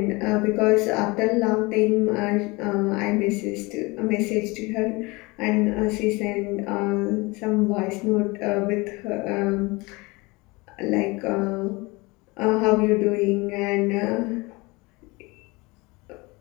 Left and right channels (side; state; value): right; quieter; 24.6 dB